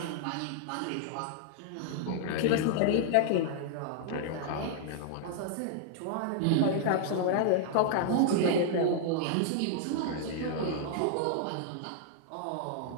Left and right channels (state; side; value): different; both; correlation -0.01